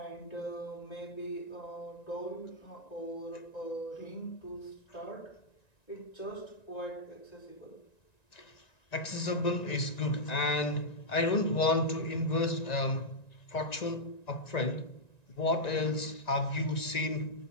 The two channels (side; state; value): right; late; 1.9 ms